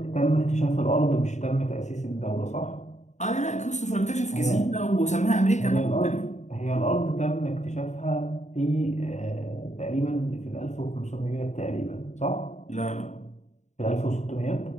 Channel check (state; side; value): late; right; 0.34 ms